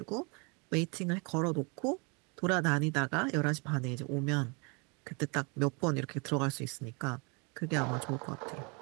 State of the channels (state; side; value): quieter; left; 32.5 dB